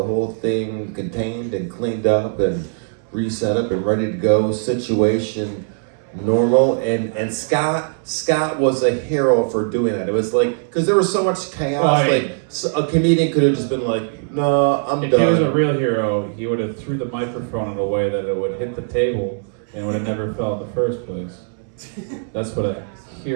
whole thing contained and cleaned up and reset up and ready to go, situation normal, and Scott was a hero for doing that. It was like, because there was so much chaos, a comedian could have just been like, no, I'm if done. he was a real hero, he would have threw the microphone in a way that it would hit the table and would have never fell in the first place. That's what a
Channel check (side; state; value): left; silent; 66 dB below the other